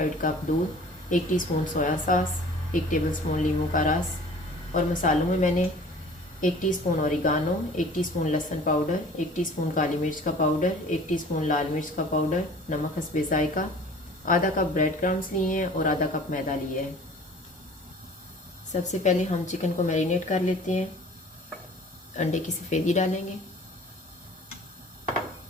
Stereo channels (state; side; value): normal; both; correlation 0.47